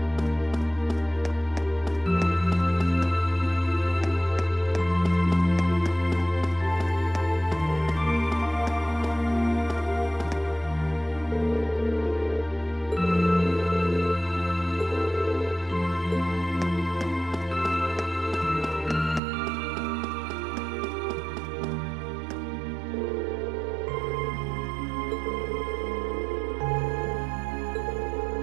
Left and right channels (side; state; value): left; drops out; at 19.2 s